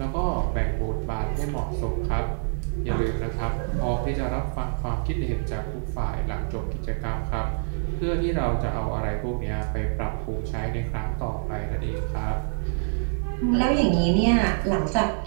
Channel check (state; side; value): silent; left; digital silence